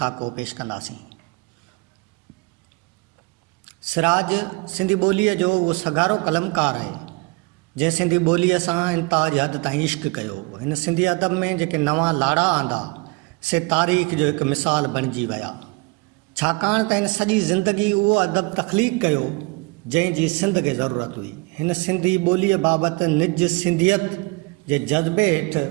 पेश कंदासीं। सिराज सिंधी ॿोलीअ जो उहो सगारो कलमकार आहे जंहिं सिंधी ॿोलीअ सां इंताज हद ताईं इश्क कयो। हिन सिंधी अदब में जेके नवां लाड़ा आंदा से तारीख़ जो हिकु मिसाल बणिजी विया, छाकाणि त हिन सॼी ज़िंदगी उहो अदब तख़लीक़ कयो जंहिंजी सिंध खे ज़रूरत हुई। हिन सिंधी ॿोलीअ बाबति निज सिंधियत जे जज़्बे हेठि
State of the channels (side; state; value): left; quieter; 27.1 dB